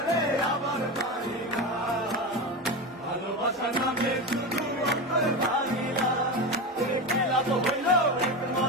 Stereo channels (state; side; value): normal; both; correlation 0.20